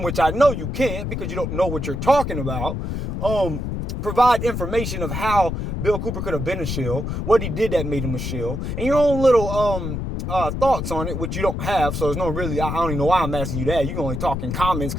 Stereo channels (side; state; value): left; noise; rumble, 3 dB below the sound